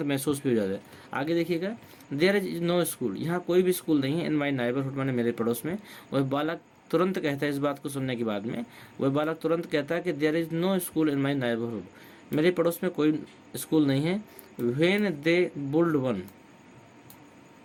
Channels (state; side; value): identical; both; correlation 1.00